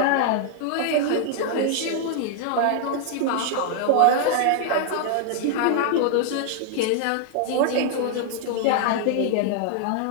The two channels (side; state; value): both; different; correlation 0.00